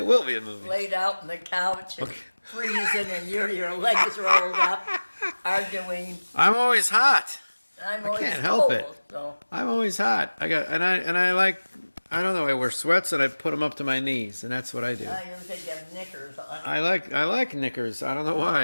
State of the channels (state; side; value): inverted; both; correlation -1.00